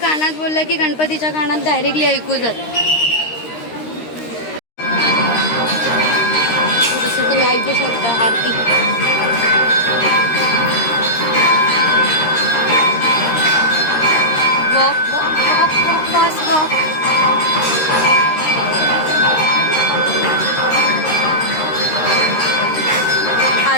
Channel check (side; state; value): right; late; 13 ms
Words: बोललं की गणपतीच्या कानात डायरेक्टली ऐकू जात. जसं तुम्ही ऐकू शकता aarti. Walk walk walk walk fast walk.